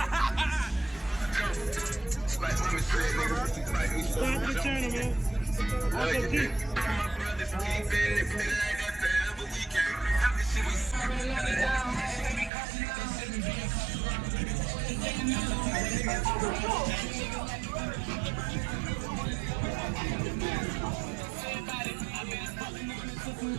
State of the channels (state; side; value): drops out; left; at 12.5 s